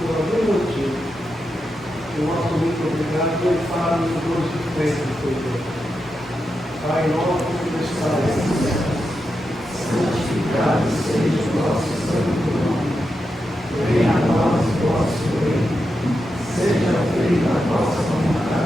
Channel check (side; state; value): both; normal; correlation 0.87